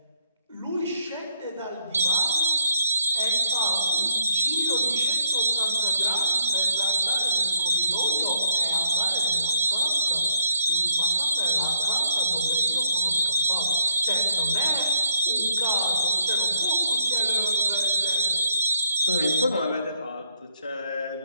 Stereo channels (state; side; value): inverted; both; correlation -0.75